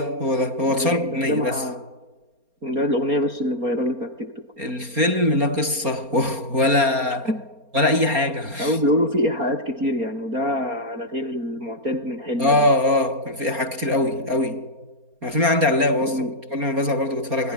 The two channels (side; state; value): left; late; 4.3 ms